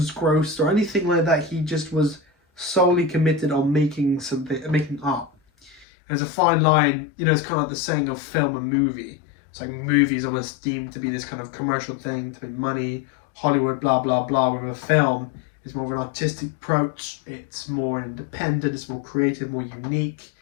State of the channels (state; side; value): drops out; right; at 5.9 s